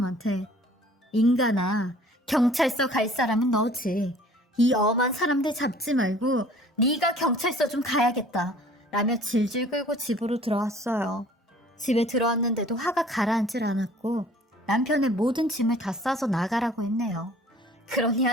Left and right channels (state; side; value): normal; both; correlation 0.52